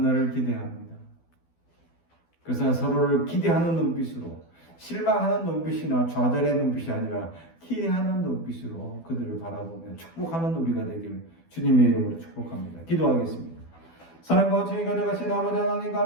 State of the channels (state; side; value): late; right; 12 ms